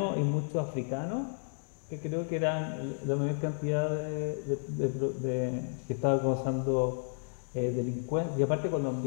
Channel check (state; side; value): silent; right; digital silence